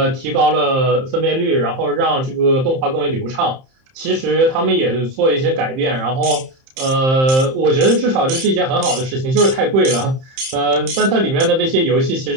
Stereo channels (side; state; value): left; late; 31 ms